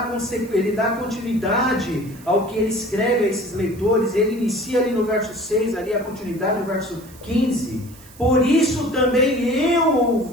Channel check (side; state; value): right; noise; hiss, 22 dB below the sound